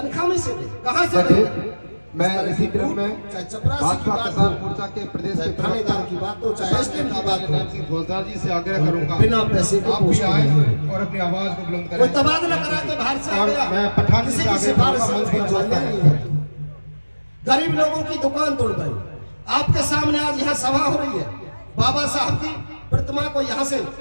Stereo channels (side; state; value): both; inverted; correlation -1.00